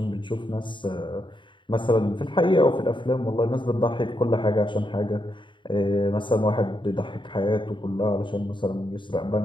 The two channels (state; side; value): late; right; 0.23 ms